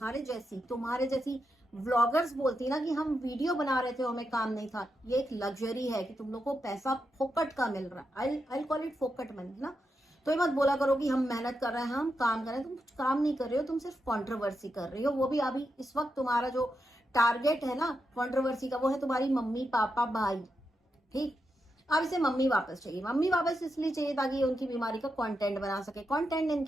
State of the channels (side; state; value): both; normal; correlation 0.86